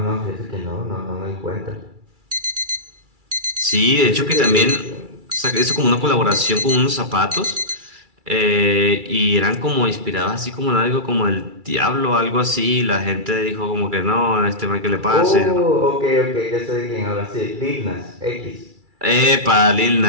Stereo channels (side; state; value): left; late; 2.3 ms